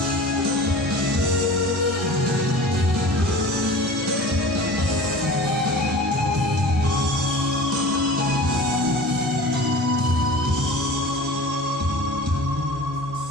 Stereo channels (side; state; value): both; normal; correlation 0.39